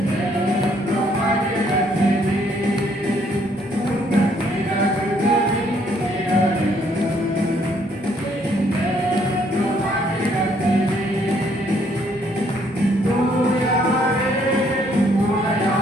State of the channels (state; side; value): normal; both; correlation 0.67